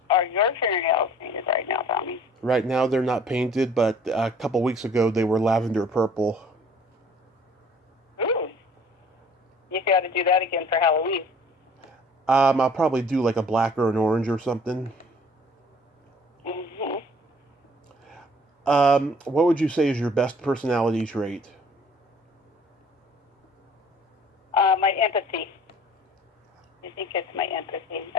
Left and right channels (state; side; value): normal; both; correlation 0.53